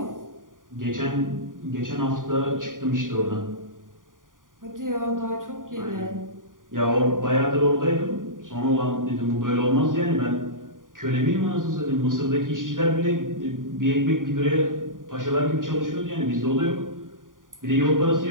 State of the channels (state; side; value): late; left; 0.89 ms